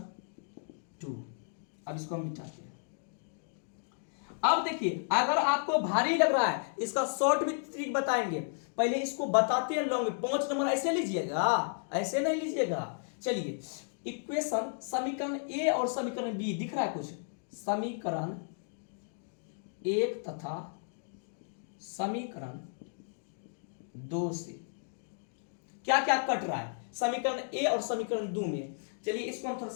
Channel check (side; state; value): right; silent; digital silence